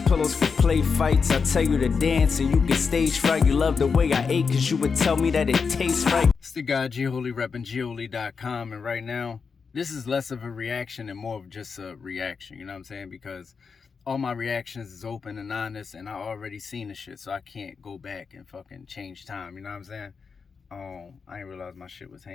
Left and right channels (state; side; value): quieter; right; 5.4 dB